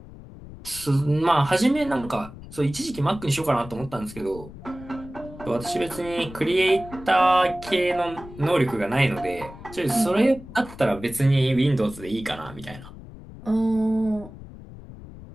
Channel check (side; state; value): left; noise; rumble, 16 dB below the sound